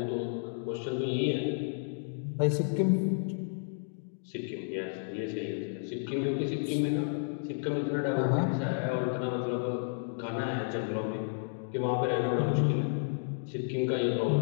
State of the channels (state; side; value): silent; right; digital silence